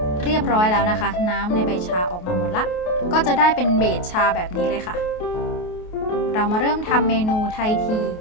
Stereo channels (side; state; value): right; late; 28 ms